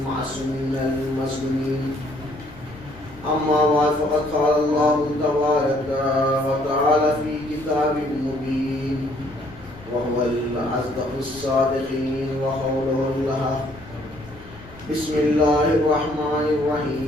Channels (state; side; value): noise; left; rumble, 20 dB below the sound